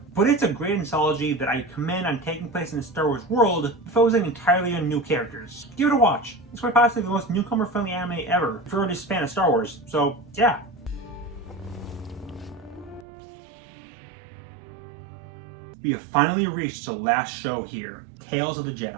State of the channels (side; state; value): left; drops out; at 13.1 s